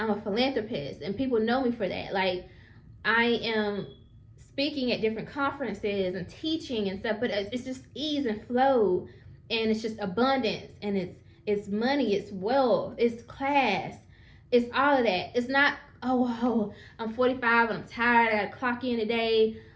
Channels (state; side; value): identical; both; correlation 1.00